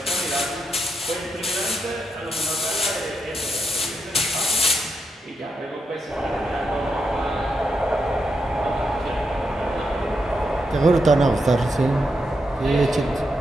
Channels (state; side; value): normal; both; correlation 0.83